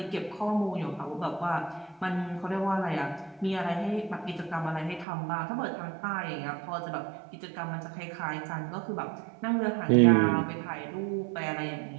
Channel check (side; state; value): left; drops out; at 5.1 s